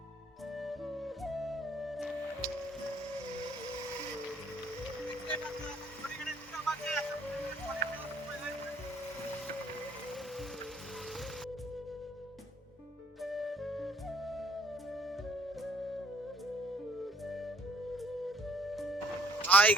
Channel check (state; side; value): normal; both; correlation 0.62